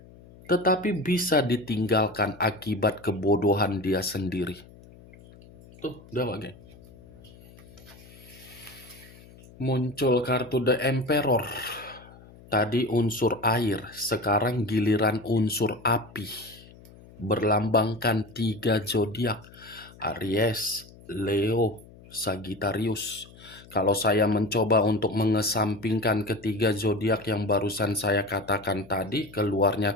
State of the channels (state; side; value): noise; left; hum, 22 dB below the sound